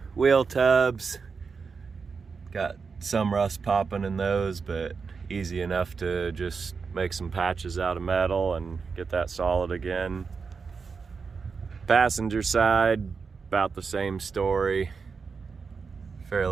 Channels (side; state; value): left; quieter; 5.2 dB